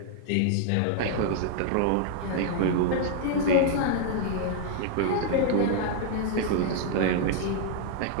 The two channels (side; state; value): both; different; correlation 0.00